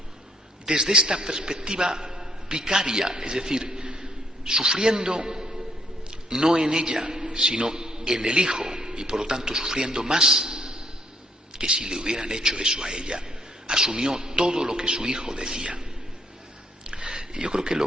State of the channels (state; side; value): normal; both; correlation 0.69